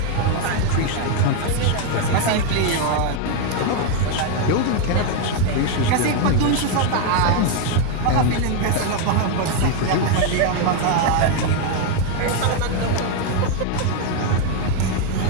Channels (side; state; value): both; different; correlation 0.01